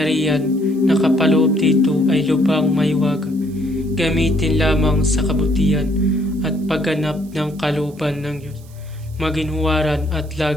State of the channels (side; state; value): right; noise; hiss, 26 dB below the sound